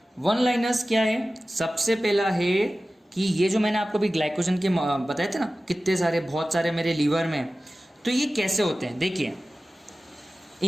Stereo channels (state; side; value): normal; both; correlation 0.96